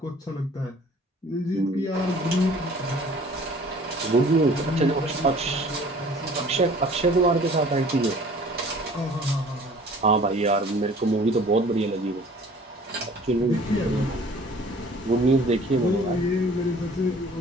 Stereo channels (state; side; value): normal; both; correlation 0.50